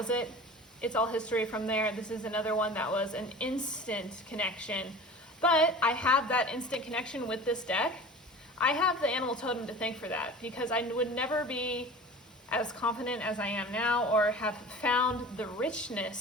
it. It's all history from there. This is another one that was an instant connection. But I have that instant connection with this deck. I have the animal totem to thank for that, because I would never be as confident as I am now or have found the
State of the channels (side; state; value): both; normal; correlation 0.38